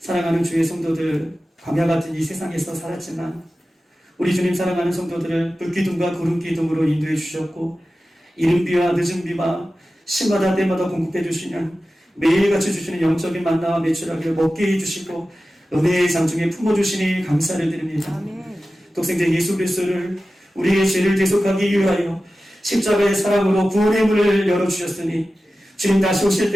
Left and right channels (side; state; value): both; normal; correlation 0.94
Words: 주의 성도들, 광야 같은 이 세상에서 살았지만 우리 주님 사랑하는 성도들을 불기둥과 구름기둥으로 인도해 주셨고 이른비와 늦은비와 시마다 때마다 공급해 주시는 매일같이 주시는 영적인 만나와 매출하기를 먹게 해주시고 은혜의 장중에 품어주시니 감사를 드립니다. 독생자 예수 그리스도를 우리의 죄를 대속하기 위하여 십자가의 사랑으로 구원의 문을 열어주셨으니 주님 다시 오실